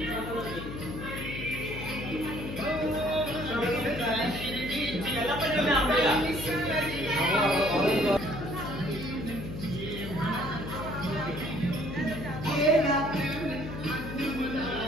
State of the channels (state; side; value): noise; left; hum, 8 dB below the sound